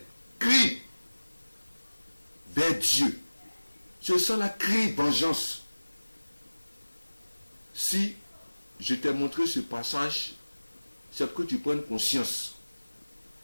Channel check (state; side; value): inverted; both; correlation -1.00